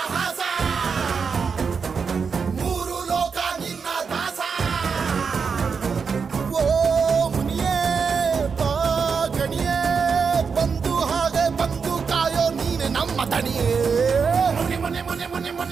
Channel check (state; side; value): quieter; left; 5.7 dB